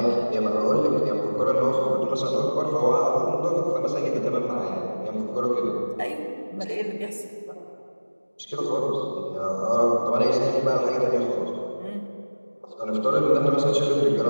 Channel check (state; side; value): inverted; both; correlation -1.00